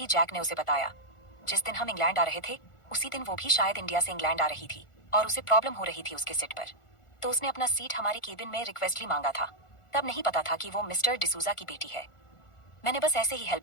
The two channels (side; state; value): right; late; 1.4 ms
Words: जैक ने उसे बताया, जिस दिन हम इंग्लैंड आ रहे थे उसी दिन वो भी शायद इंडिया से इंग्लैंड आ रही थी, और उसे प्रॉब्लम हो रही थी उसके सीट पर, तो उसने अपना सीट हमारे केबिन में रिक्वेस्टली मांगा था। तब नहीं पता था कि वो मिस्टर डिसूजा की बेटी है, मैंने बस ऐसे ही